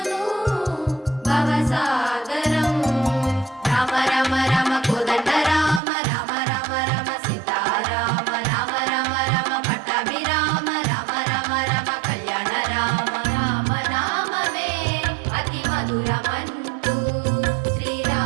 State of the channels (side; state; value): left; drops out; at 5.8 s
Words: భవసాగరం రామ రామ రామ కోదండ రామ రామ రామ రామ సీతారామ రామ రామ రామ పట్టాభిరామ రామ రామ రామ కళ్యాణ రామ రామ నామమే అతి మధురమంటూ